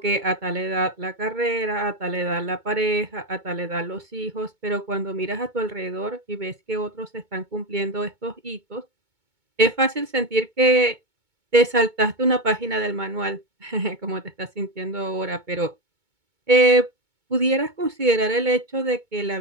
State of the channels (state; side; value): late; left; 2.2 ms